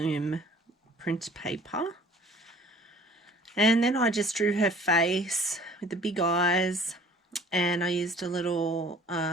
print paper. And then I just drew her face with the big eyes, and I used a little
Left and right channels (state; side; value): normal; both; correlation 0.51